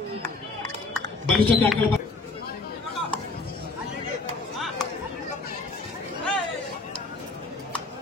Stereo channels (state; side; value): quieter; right; 3.7 dB